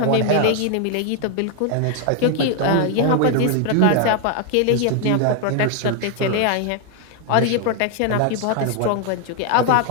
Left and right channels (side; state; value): both; different; correlation 0.01